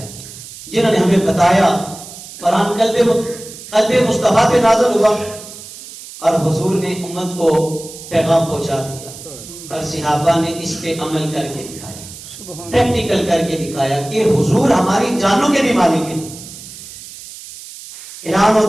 جنہوں نے ہمیں بتایا. قرآن قلب مصطفیٰ پہ نازل ہوا اور حضور نے امت کو پیغام پہنچا دیا اور صحابہ نے اس پہ عمل کر کے دکھایا, پریکٹیکل کر کے دکھایا کہ حضور ہماری جانوں کے بھی مالک ہیں. اعلان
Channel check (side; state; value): right; noise; hiss, 15 dB below the sound